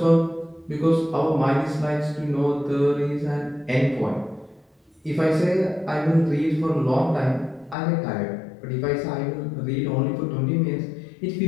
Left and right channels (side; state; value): right; drops out; at 7.8 s